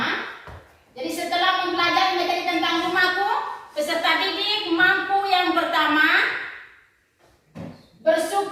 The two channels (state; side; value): identical; both; correlation 1.00